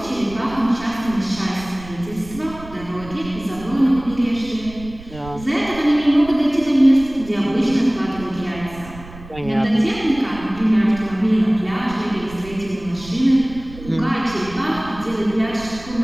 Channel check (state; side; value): noise; right; rumble, 16 dB below the sound